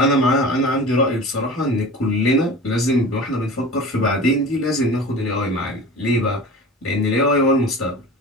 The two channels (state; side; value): normal; both; correlation 0.36